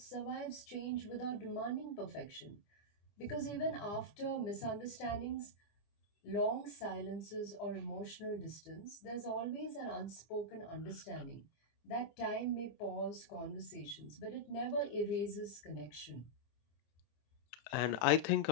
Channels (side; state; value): right; late; 25 ms